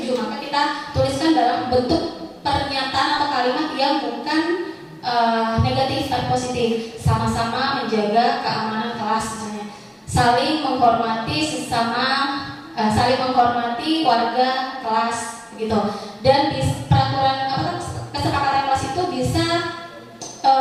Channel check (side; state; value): both; identical; correlation 1.00